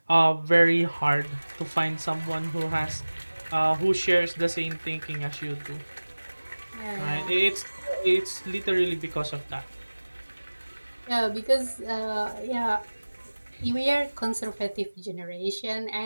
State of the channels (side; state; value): both; inverted; correlation -1.00